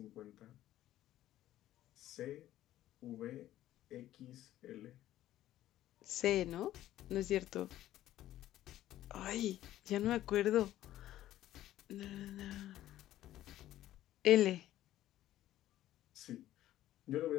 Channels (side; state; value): right; quieter; 13.7 dB